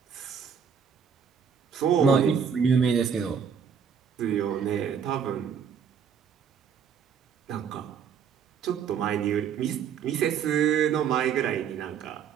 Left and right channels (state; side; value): quieter; left; 7.2 dB